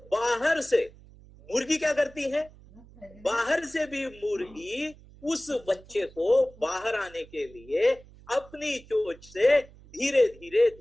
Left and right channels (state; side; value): noise; right; hum, 23 dB below the sound